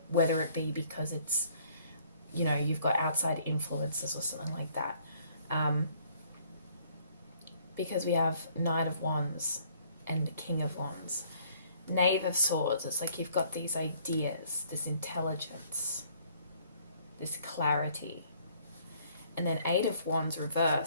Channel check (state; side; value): inverted; both; correlation -0.61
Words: whether it be because it's, you know, you've got outside influences or something like that. Because we have Knight of Wands and King of Wands. Knave of Swords, it's like you've got these ideas, this intelligence, this clarity. And then Eight of Wands